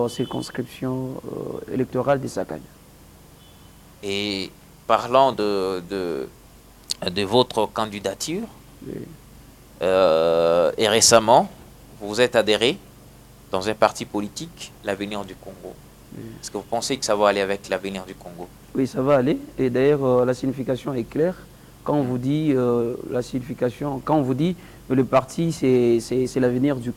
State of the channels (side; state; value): both; identical; correlation 1.00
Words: circonscription électorale de Sakagne. Et parlant de votre candidature, oui. Et récemment, vous vous êtes adhéré dans un parti politique, l'Avenir du Congo. Oui. Est-ce que vous pensez que ça va aller avec l'Avenir du Congo? Oui, ça va aller. Et d'ailleurs, la signification est claire. Quand on vous dit la signification, quand on vous dit le parti c'est l'avenir du